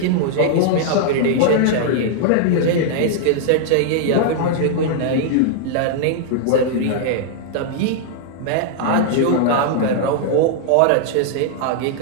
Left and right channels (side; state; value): both; different; correlation -0.01